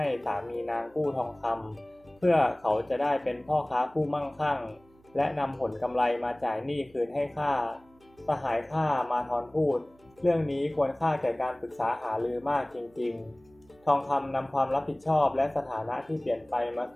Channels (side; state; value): right; noise; hum, 30 dB below the sound